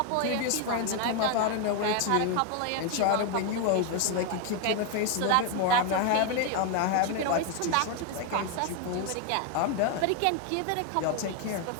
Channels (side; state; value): both; different; correlation 0.01